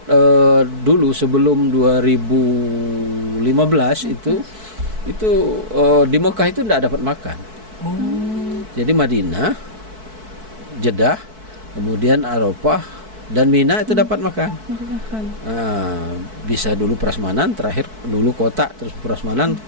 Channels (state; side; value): late; left; 4.6 ms